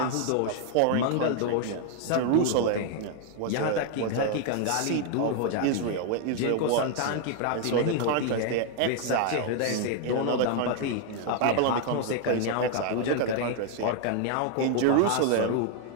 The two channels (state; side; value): different; both; correlation 0.00